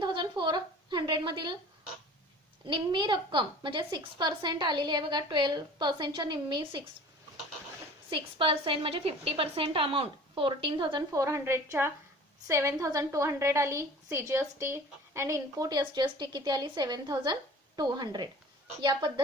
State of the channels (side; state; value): both; normal; correlation 0.44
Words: मधील निम्मी रक्कम म्हणजे 6% आलेली आहे. बघा, 12%च्या निम्मी 6% म्हणजे 50% अमाऊंट 14,400च्या 7,200 आली CGST अँड इनपुट SGST किती आली 7,200. या